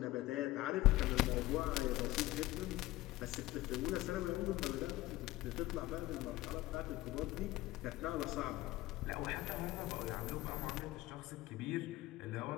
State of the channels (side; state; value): right; quieter; 17.6 dB